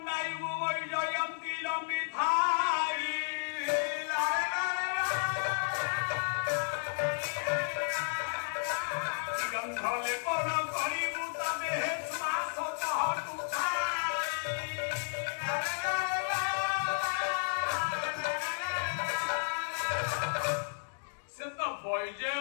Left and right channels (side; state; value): right; silent; digital silence